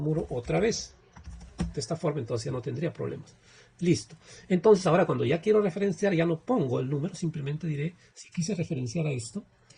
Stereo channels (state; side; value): identical; both; correlation 1.00